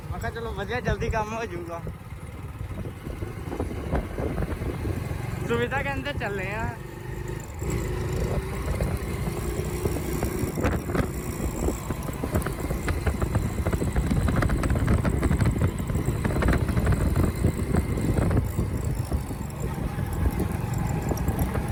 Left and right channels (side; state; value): both; identical; correlation 1.00